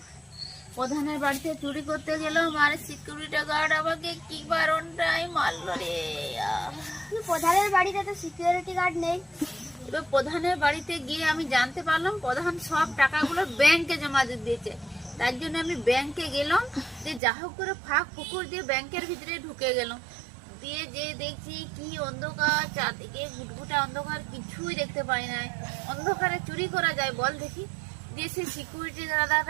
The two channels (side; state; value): left; drops out; at 17.2 s